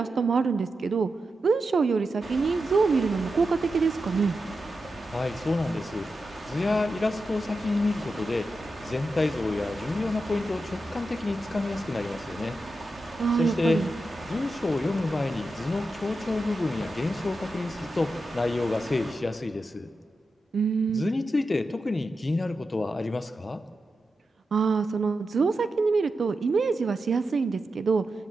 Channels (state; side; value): normal; both; correlation 0.89